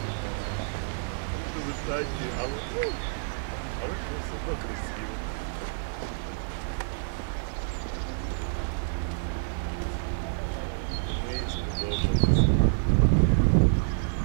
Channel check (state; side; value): silent; left; 59 dB below the other